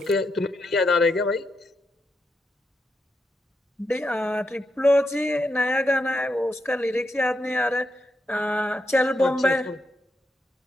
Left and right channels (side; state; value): both; normal; correlation 0.83